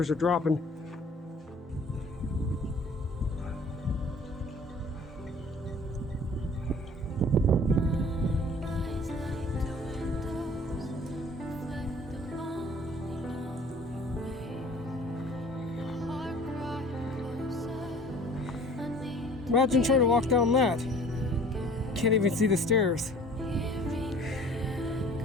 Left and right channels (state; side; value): normal; both; correlation 0.49